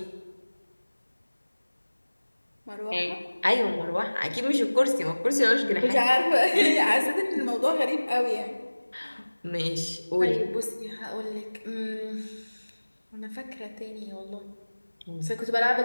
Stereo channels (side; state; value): both; inverted; correlation -1.00